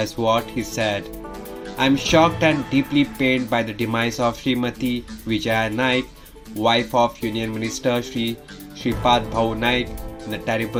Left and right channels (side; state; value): both; identical; correlation 1.00